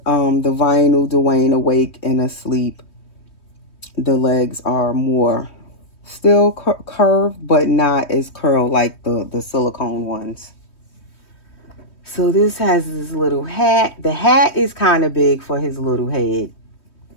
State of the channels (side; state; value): right; late; 3.2 ms